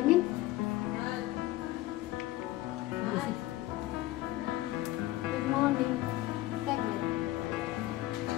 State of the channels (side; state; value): right; quieter; 16.7 dB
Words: Good morning. Segment.